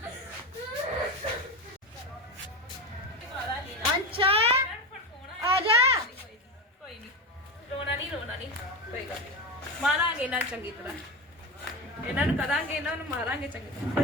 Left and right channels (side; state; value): both; normal; correlation 0.19